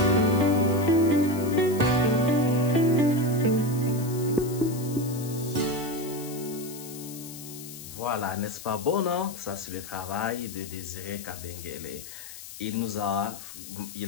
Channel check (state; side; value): noise; left; hiss, 13 dB below the sound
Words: Voilà, n'est-ce pas bon, non? Ça, c'est le travail de Désiré Kabengele.